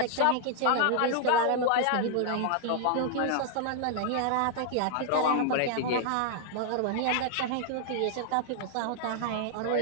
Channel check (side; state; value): both; different; correlation 0.00